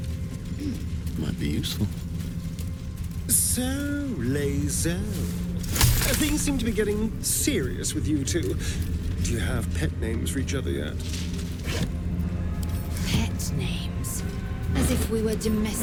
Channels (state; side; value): identical; both; correlation 1.00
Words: Might be useful. So, Lae'zel. Things seem to be getting serious with you two. Do you have pet names for each other yet? Pet names? As if we were